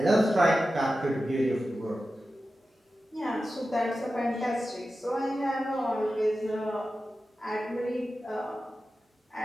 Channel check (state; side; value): normal; both; correlation 0.93